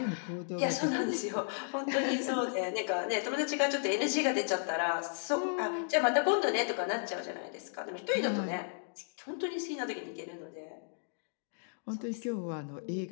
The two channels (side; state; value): right; silent; digital silence